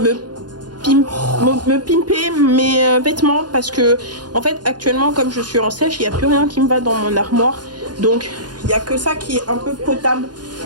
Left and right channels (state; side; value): late; left; 0.70 ms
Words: pimper mes vêtements parce que en fait actuellement comme je suis en sèche, il n'y a plus rien qui me va dans mon armoire. Donc il n'y a que ça qui est un peu potable